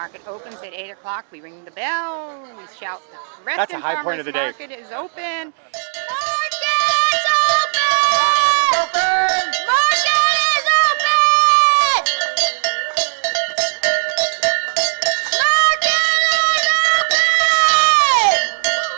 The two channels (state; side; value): silent; left; digital silence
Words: opens at 8 o'clock, we ring the bell, we shout, That's a high point of the day. Market is open. Market is open! Market is open! Market is open!